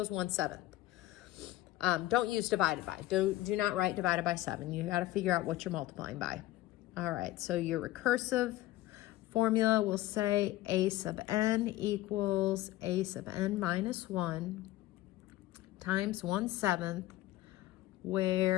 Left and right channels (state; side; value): quieter; right; 16.3 dB